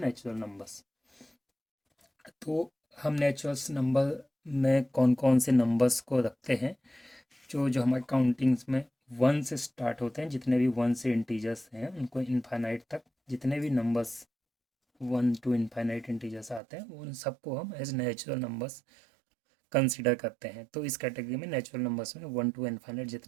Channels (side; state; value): left; drops out; at 16.6 s